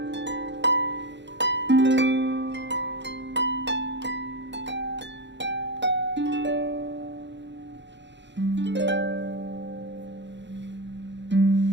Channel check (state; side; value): late; left; 0.52 ms